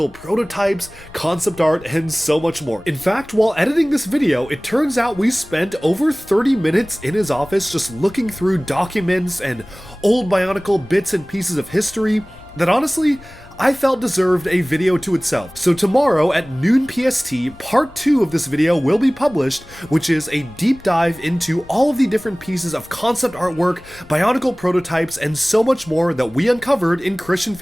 prototypes, concept art, and so much more. In fact, while editing this video, it turns out we spent over 30 minutes in his office just looking through documents and old Bionicle bits and pieces of history that honestly, I felt deserved a video to itself. So tomorrow at noon PST, part 2 of this video will be published, which is a deep dive into all of the different pieces of concept artwork, Bionicle prototypes, and so much more that we uncovered in Christian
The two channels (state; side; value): noise; left; rumble, 23 dB below the sound